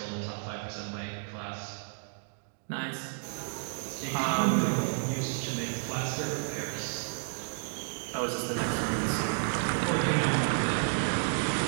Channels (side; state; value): left; silent; digital silence